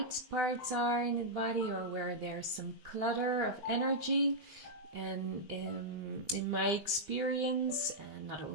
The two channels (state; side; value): late; right; 20 ms